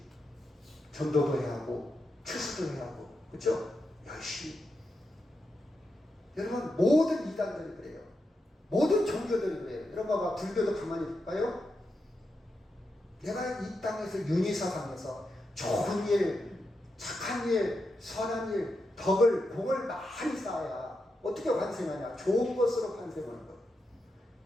전도도 해야 하고 추수도 해야 하고, 그렇죠? 열심히. 여러분, 모든 이단들이 그래요. 모든 종교들이 그래요. 여러분 봐봐, 불교도 가만히 볼까요? 내가 이 땅에서 윤희사상에서 좋은 일, 착한 일, 선한 일, 덕을, 공을 많이 쌓아야 어떻게 환생하냐? 좋은 것으로 환생하는 것.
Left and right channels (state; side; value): normal; both; correlation 0.86